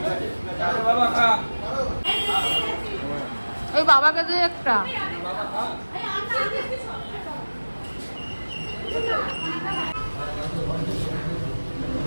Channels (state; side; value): inverted; both; correlation -1.00